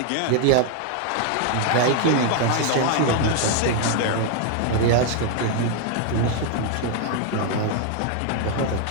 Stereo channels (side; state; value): both; different; correlation 0.00